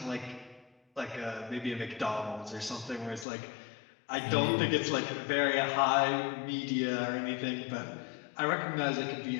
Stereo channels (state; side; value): drops out; right; at 3.2 s